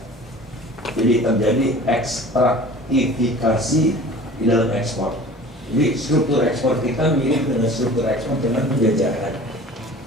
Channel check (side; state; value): both; normal; correlation 0.43